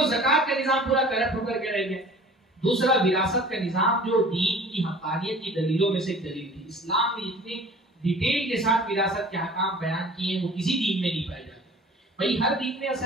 ज़कात का निजाम पूरा करप्ट होकर के रह गया, दूसरा विरासत का निजाम जो दीन की हक़ानियत की दलीलों में से एक दलील थी। इस्लाम में इतने डिटेल के साथ विरासत के अहकाम बयान किए वो किसी दीन में नहीं पाए जाते। भाई हर दीन में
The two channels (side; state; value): both; normal; correlation 0.46